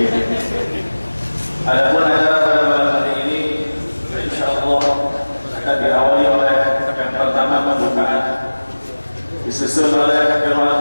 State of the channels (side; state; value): both; inverted; correlation -1.00